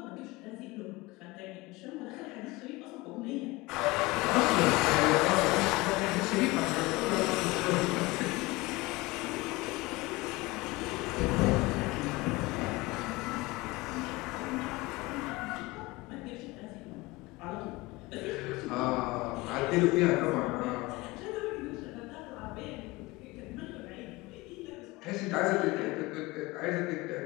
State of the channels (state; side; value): quieter; right; 21.7 dB